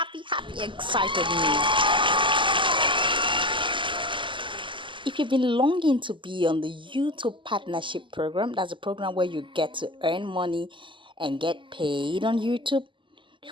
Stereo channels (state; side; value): late; left; 0.24 ms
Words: excited news. If you've been longing to be on the YouTube partnership program, that's a program where you get to earn money and get paid on YouTube,